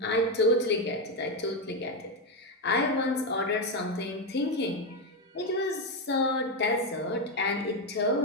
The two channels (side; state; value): both; normal; correlation 0.08